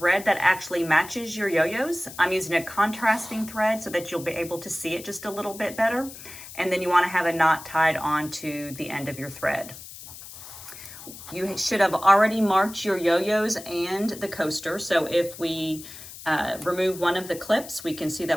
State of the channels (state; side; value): noise; left; hiss, 14 dB below the sound